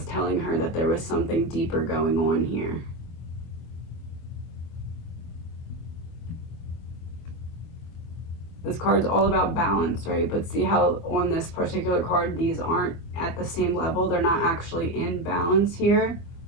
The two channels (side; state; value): right; late; 24 ms